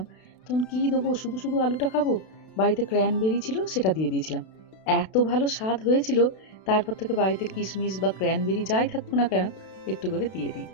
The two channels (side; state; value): right; late; 32 ms